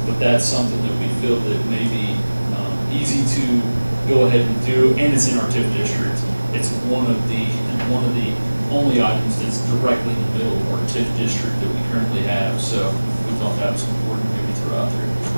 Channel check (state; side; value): inverted; both; correlation -1.00